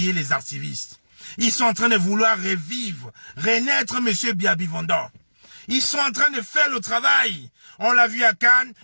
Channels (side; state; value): both; inverted; correlation -1.00